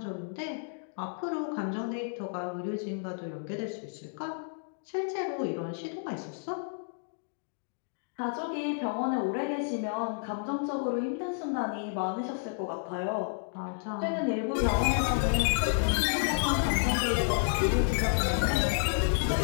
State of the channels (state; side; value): silent; right; digital silence